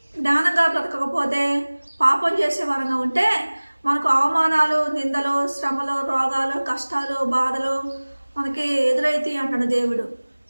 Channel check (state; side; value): inverted; both; correlation -1.00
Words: జ్ఞానంగా బ్రతకకపోతే, పాపం చేసే వారంగా ఉంటే మనకు అవమానాలు, నిందలు, శ్రమలు, రోగాలు, కష్టాలు, బాధలు మనకి ఎదురైతాయి అంటాడు దేవుడు.